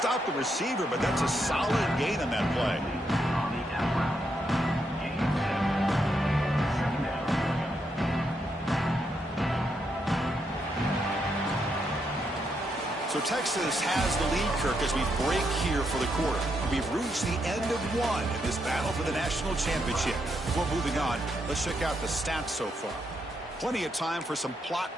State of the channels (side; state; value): both; normal; correlation 0.80